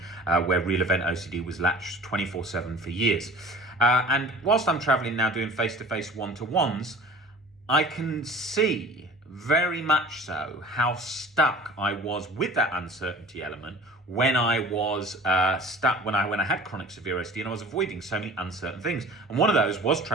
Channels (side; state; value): both; normal; correlation 0.43